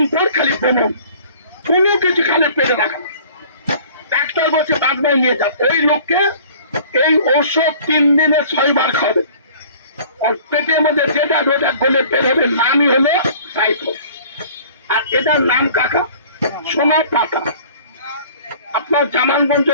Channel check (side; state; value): both; inverted; correlation -0.49